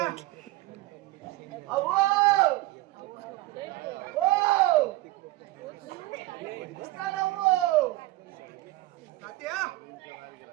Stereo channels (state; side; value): quieter; left; 18.4 dB